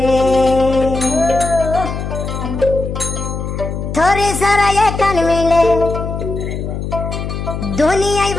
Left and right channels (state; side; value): noise; left; hum, 5 dB below the sound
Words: থরে সারাই কান মিলে দুনিয়ায়